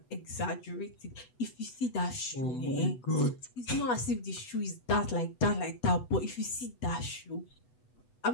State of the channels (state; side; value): late; right; 8.1 ms